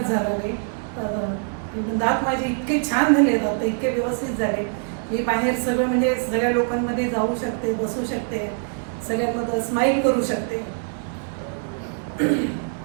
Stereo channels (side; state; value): left; silent; 63 dB below the other